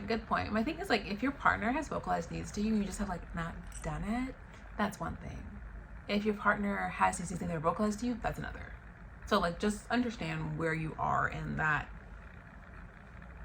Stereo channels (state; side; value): identical; both; correlation 1.00